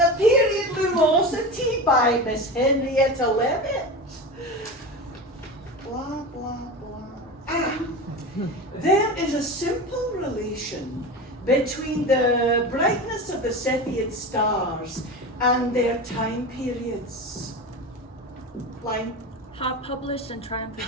Period Lumosity by Miss Henrietta Levitt. Blah, blah, blah. Ah, there is a simple relation between the brightness of the Cepheid stars and their time periods. Line. Hot published and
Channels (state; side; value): normal; both; correlation 0.26